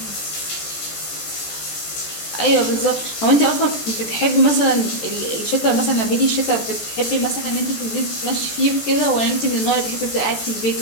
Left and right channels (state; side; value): late; right; 14 ms